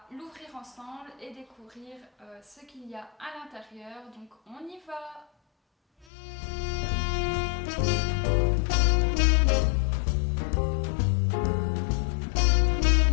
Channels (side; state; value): right; drops out; at 6.1 s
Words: l'ouvrir ensemble et découvrir ce qu'il y a à l'intérieur. Donc on y va!